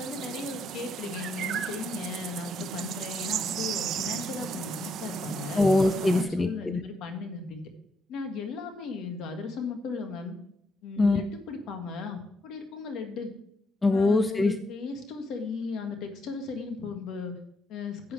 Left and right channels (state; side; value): normal; both; correlation 0.77